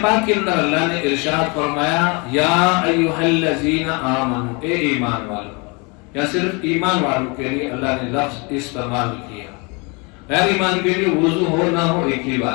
پاک کے اندر اللہ نے ارشاد فرمایا یا ایھا الذین آمنوا، اے ایمان والو. یا صرف ایمان والوں کے لیے اللہ نے لفظ استعمال کیا، غیر ایمان کے لیے وضو ہو نہ ہو ایک ہی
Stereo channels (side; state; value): right; quieter; 30.3 dB